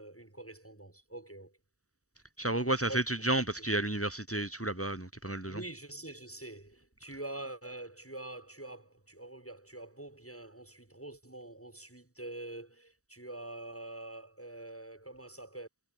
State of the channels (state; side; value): late; right; 0.65 ms